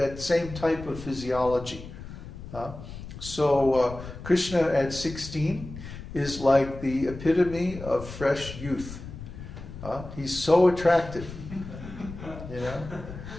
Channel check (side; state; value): left; noise; rumble, 12 dB below the sound